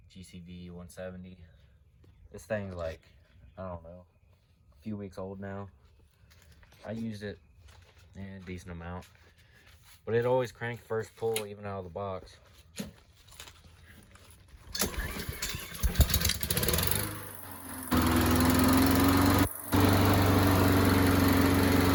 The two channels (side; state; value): both; identical; correlation 1.00